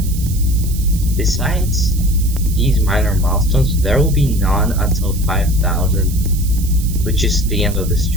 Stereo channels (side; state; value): right; noise; hiss, 13 dB below the sound